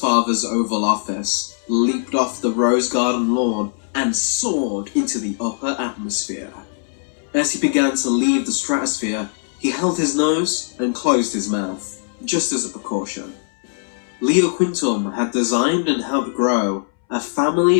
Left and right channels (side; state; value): right; silent; 63 dB below the other